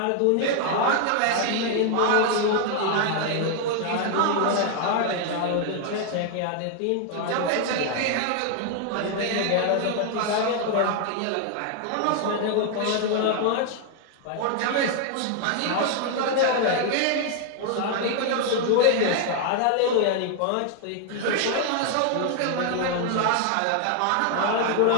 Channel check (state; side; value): different; both; correlation 0.00